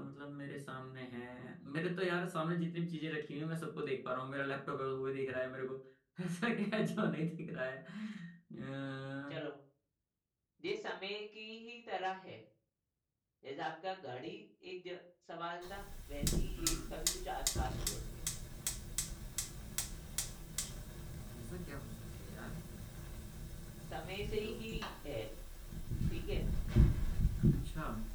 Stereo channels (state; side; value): identical; both; correlation 1.00